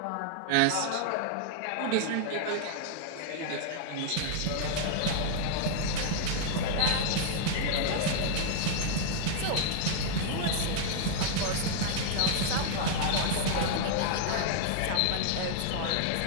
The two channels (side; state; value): both; different; correlation 0.00